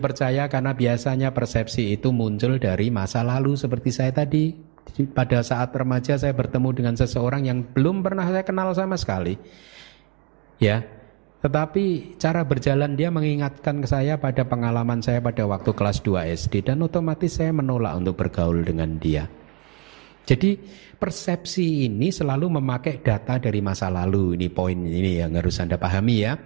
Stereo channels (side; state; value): left; quieter; 33.1 dB